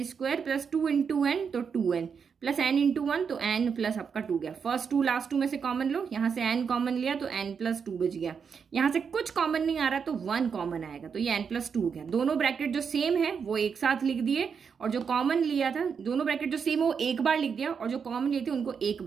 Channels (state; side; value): quieter; left; 6.4 dB